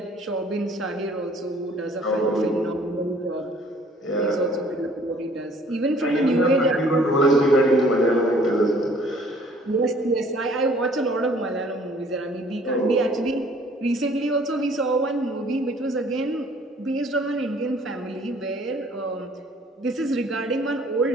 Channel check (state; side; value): normal; both; correlation 0.57